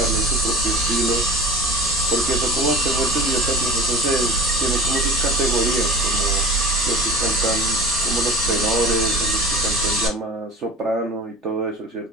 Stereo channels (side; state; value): both; normal; correlation 0.36